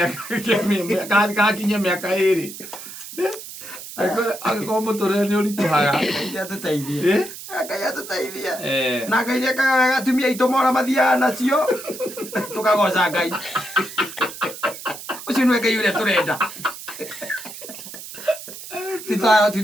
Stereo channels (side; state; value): right; noise; hiss, 12 dB below the sound